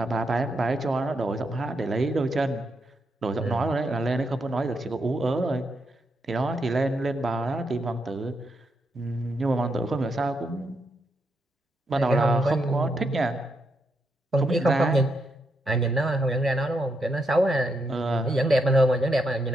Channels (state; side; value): normal; both; correlation 0.81